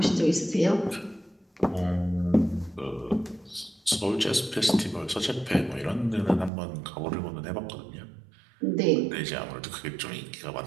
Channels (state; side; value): drops out; left; at 6.5 s